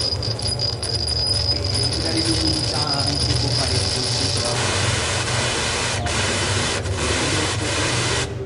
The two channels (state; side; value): identical; both; correlation 1.00